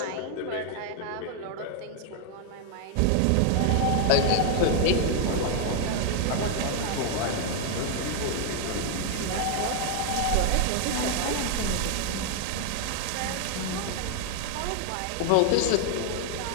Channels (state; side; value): different; both; correlation 0.00